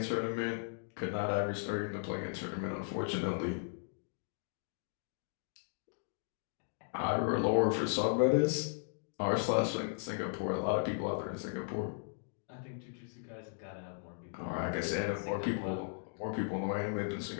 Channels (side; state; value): right; silent; digital silence